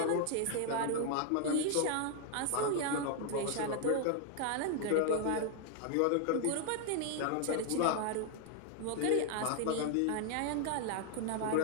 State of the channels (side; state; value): both; different; correlation 0.00